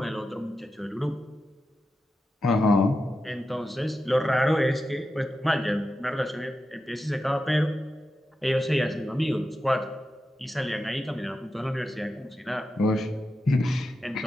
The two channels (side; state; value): both; normal; correlation 0.90